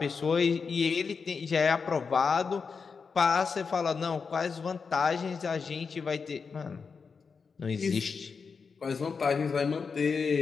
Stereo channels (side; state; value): right; quieter; 5.3 dB